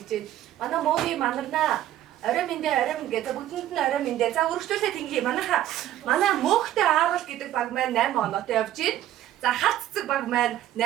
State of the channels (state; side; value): quieter; left; 12.9 dB